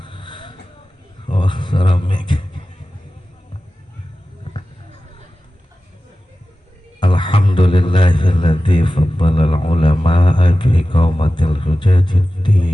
Oh, suara mic. Alhamdulillahilladzi faddala al-ulama'a bi iqamatil hujajid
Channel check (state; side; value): normal; both; correlation 0.95